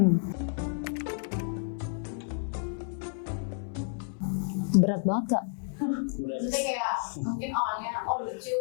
Berat banget Kak. Berat. Maksudnya kayak mungkin orangnya lucu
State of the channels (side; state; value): right; silent; 57 dB below the other